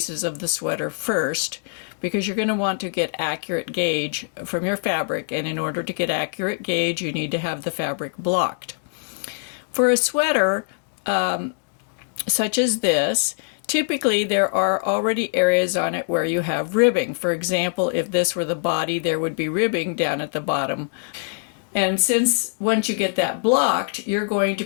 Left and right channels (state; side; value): silent; right; digital silence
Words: of the sweater first, because you're going to want to get accurate gauge from your fabric, and in order to get accurate gauge you need to have the fabric blocked. For a sweater such as this, typically there are already areas on it where you have ribbing. For example, if this were the body, there would be ribbing down at the bottom. And since once you get that blocked, you're going to